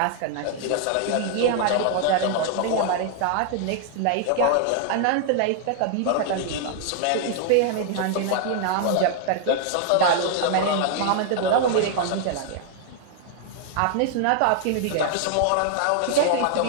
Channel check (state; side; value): different; both; correlation 0.00